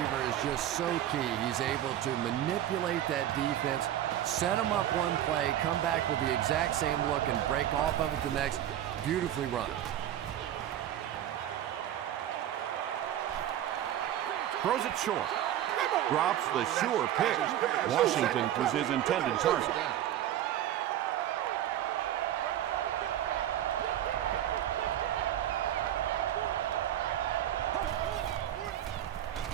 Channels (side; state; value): left; quieter; 11.8 dB